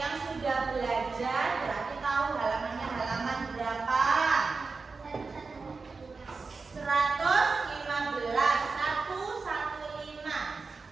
sudah belajar berarti tahu halamannya halaman berapa? 115.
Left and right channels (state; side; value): quieter; left; 4.3 dB